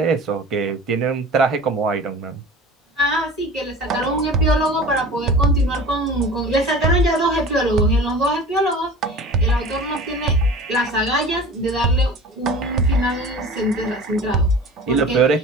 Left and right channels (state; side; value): normal; both; correlation 0.39